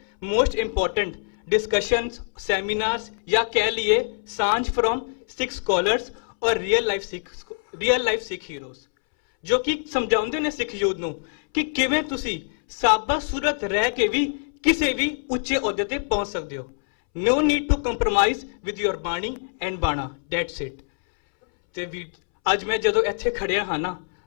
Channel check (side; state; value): right; silent; 62 dB below the other